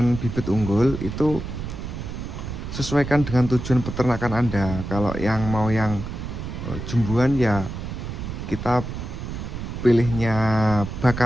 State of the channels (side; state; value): right; noise; rumble, 7 dB below the sound